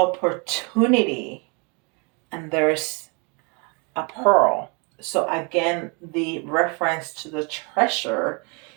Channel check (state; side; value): quieter; left; 33.0 dB